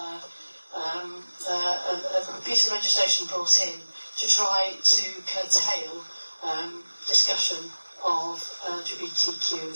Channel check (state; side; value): inverted; both; correlation -1.00